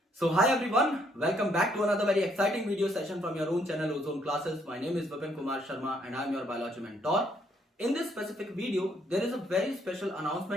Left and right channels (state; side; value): normal; both; correlation 0.69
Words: So hi everyone, welcome back to another very exciting video session from your own channel Ozone Classes. My name is Vipin Kumar Sharma and I am your biology mentor. In this specific video, there is a very special